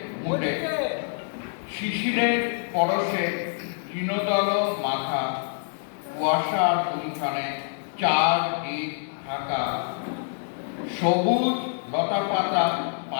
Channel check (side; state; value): right; silent; 61 dB below the other